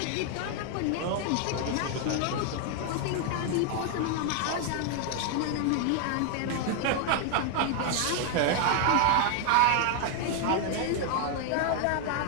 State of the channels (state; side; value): different; both; correlation 0.00